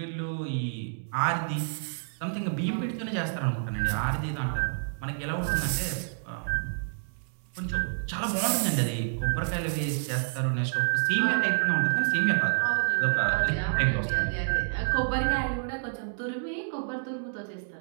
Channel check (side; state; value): left; silent; 59 dB below the other